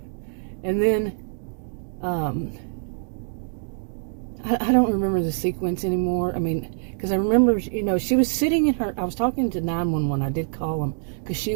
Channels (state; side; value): silent; left; digital silence